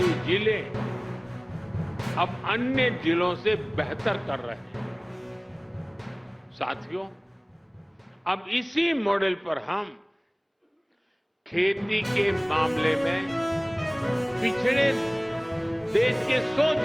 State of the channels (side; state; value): both; identical; correlation 1.00